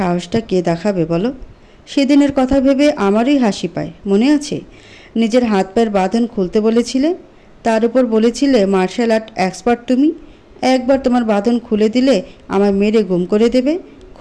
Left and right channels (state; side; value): identical; both; correlation 1.00